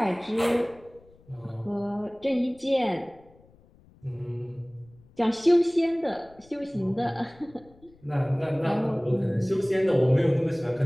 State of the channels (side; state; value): left; noise; rumble, 28 dB below the sound